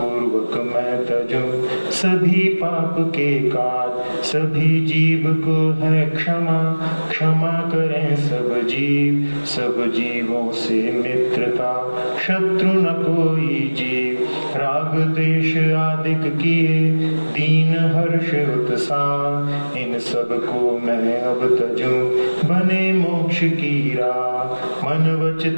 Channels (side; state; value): both; inverted; correlation -1.00